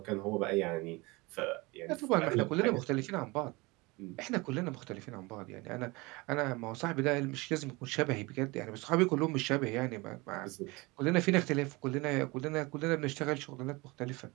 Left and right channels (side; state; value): left; quieter; 24.4 dB